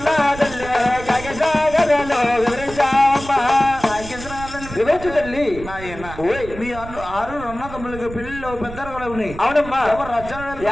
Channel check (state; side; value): noise; right; rumble, 13 dB below the sound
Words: తల్లి కాగసాగరలో వివరించావమ్మా వివరించు తల్లి. ఓయ్ మీ ఆరు రన్న తమ్ముళ్ళకి పెళ్లిలో పెద్దలు కూడా ఉన్నాయి. అవునమ్మా ఎవరు రచ్చన